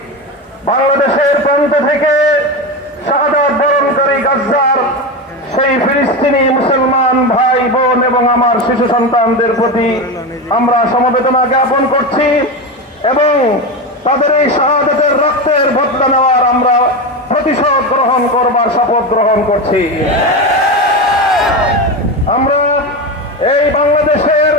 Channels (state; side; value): normal; both; correlation 0.19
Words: বাংলাদেশের প্রান্ত থেকে শাহাদাত বরণকারী গাজ্জার সেই ফিলিস্তিনি মুসলমান ভাই বোন এবং আমার শিশু সন্তানদের প্রতি আমরা সমবেদনা জ্ঞাপন করছি এবং তাদের এই শাহাদাতের রক্তের বদলা নেওয়ার আমরা প্রতিশোধ গ্রহণ করবার শপথ গ্রহণ করছি। আমরা এই বাংলাদেশের